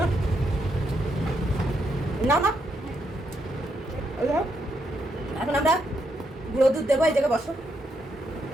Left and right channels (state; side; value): normal; both; correlation 0.79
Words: না না। এখন আমরা গুঁড়ো দুধ দেবো, এই জায়গায় বসো।